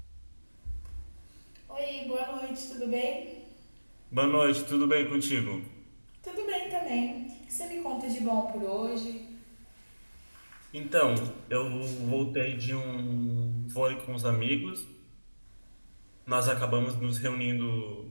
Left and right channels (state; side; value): inverted; both; correlation -1.00